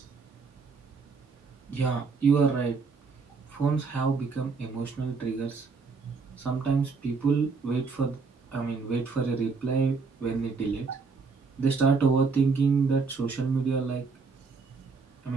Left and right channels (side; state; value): left; quieter; 4.7 dB